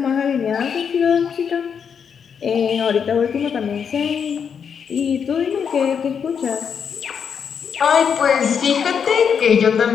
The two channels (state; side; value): quieter; right; 7.0 dB